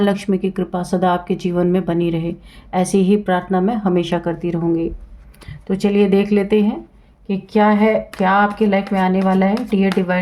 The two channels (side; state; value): both; identical; correlation 1.00